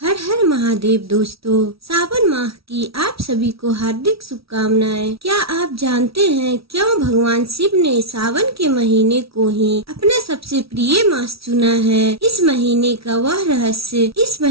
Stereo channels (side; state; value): left; late; 0.76 ms